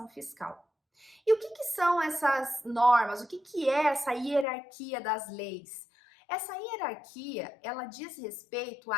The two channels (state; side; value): drops out; right; at 4.5 s